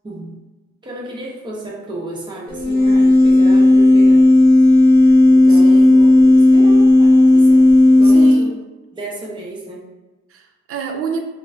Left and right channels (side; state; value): both; normal; correlation 0.98